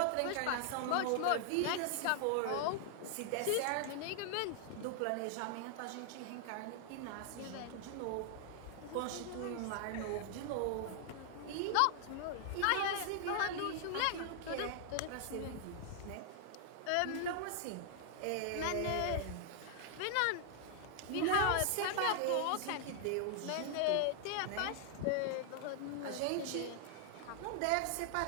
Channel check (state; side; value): different; both; correlation 0.00